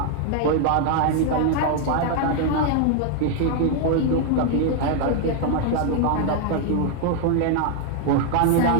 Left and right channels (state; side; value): different; both; correlation 0.00